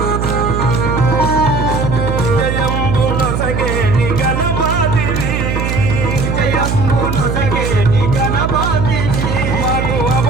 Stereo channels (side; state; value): right; noise; hum, 1 dB below the sound